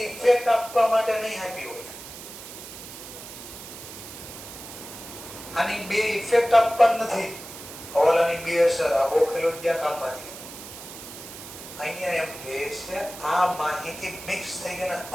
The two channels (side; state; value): right; noise; hiss, 13 dB below the sound